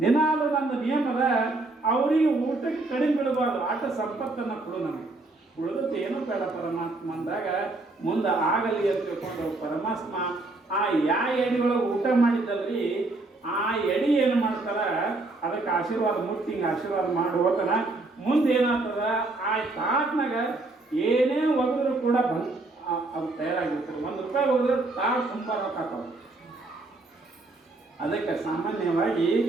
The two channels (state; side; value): quieter; left; 3.1 dB